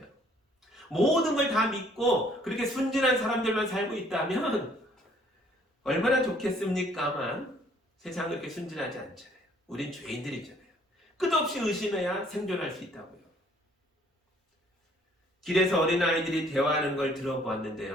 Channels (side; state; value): both; normal; correlation 0.61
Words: 모든 걸 다 믿고 그렇게 순진한 사람들만 살고 있다면 얼마나 좋겠습니까만 세상은 그렇게 순진하지 않잖아요. 우린 죄인들이잖아요. 끝없이 의심해야 생존할 수 있다고요. 길에서 어린아이들이 대화하는 걸